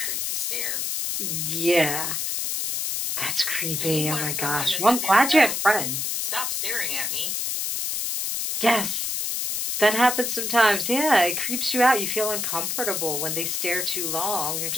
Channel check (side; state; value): left; noise; hiss, 1 dB below the sound